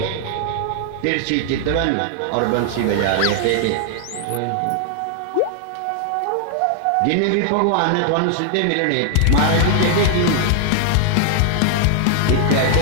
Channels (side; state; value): both; different; correlation 0.00